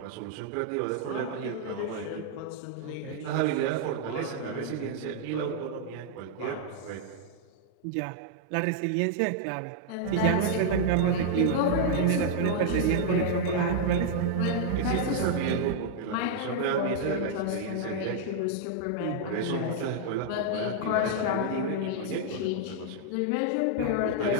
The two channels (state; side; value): different; both; correlation -0.01